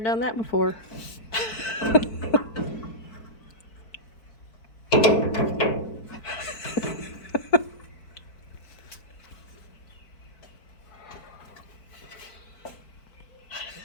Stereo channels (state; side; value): late; right; 4.5 ms